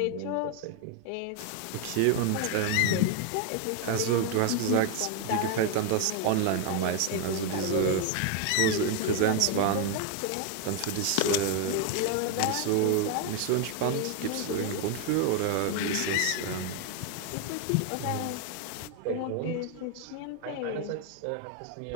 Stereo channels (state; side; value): different; both; correlation 0.01